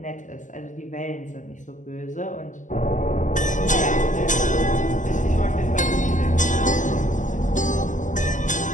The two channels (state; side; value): late; right; 0.37 ms